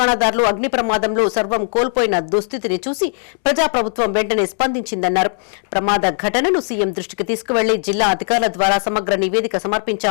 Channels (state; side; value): silent; right; 67 dB below the other